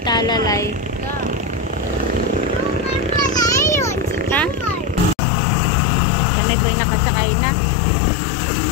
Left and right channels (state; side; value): drops out; right; at 5.2 s